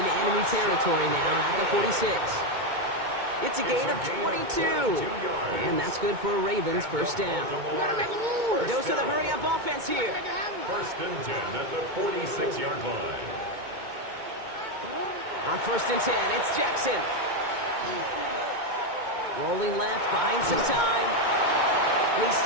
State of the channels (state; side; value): late; left; 2.2 ms